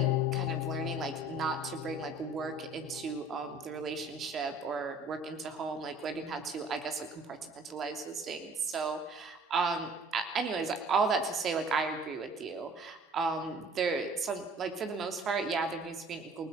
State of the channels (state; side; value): normal; both; correlation 0.51